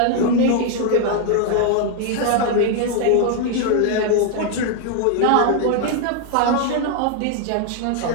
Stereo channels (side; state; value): both; different; correlation 0.00